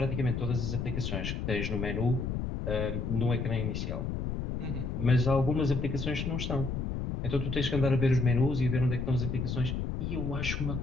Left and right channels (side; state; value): left; noise; rumble, 3 dB below the sound